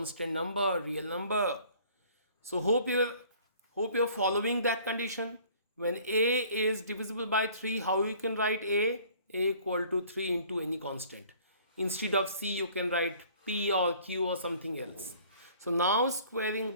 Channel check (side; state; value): both; inverted; correlation -0.53